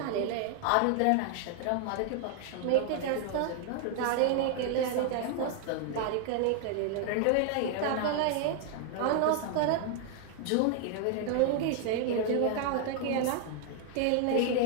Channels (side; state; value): both; different; correlation 0.00